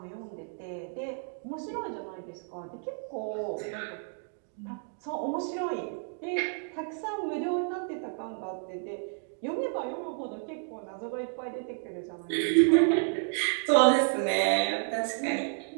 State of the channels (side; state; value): left; silent; 57 dB below the other